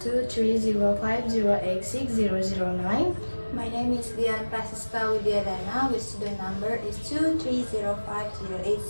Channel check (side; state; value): both; inverted; correlation -1.00